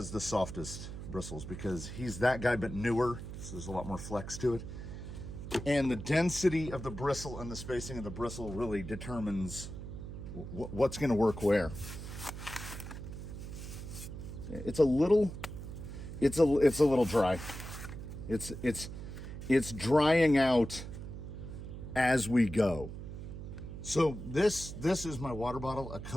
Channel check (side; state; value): right; noise; hum, 9 dB below the sound